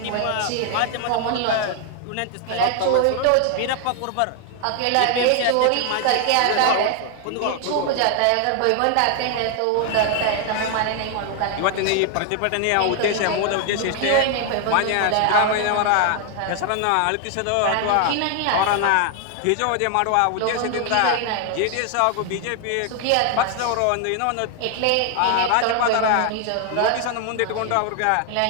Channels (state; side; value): different; both; correlation 0.00